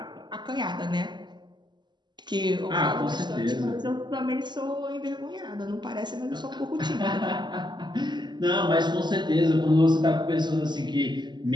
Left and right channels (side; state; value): left; late; 0.21 ms